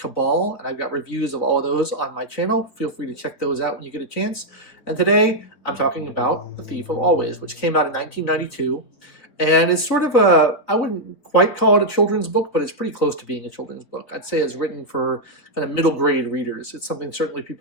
and I've got reviews of all of those on my channel. Feel free to check those out when you get a chance. And today I'm talking about The Thief of Always, which came out in 1992. And it's sort of I wouldn't quite call it a children's book, but it's pretty close to being a children's book. I'd say it's written for kind of middle grade readers. It's something certainly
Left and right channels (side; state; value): right; late; 3.9 ms